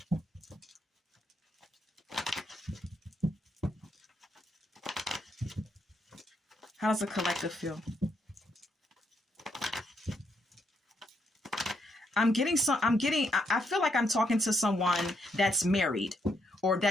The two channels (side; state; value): both; normal; correlation 0.77